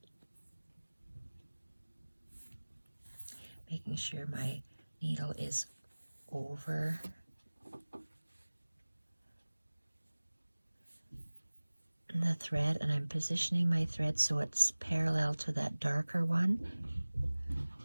Making sure my needle is over the thread, and I'm positioning my thread so it's parallel to that darker one.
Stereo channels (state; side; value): inverted; both; correlation -1.00